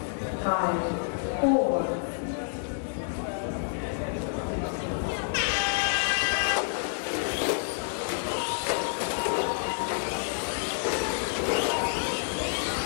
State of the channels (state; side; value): silent; right; digital silence